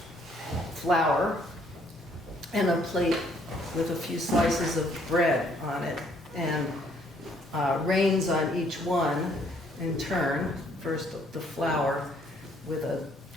flour and a plate with a few slices of bread on it, and rains on each one in turn. First the flour with a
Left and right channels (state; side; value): normal; both; correlation 0.65